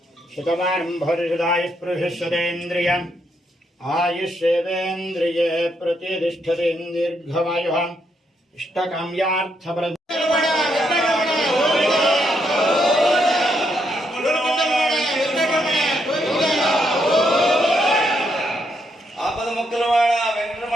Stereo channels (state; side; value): normal; both; correlation 0.77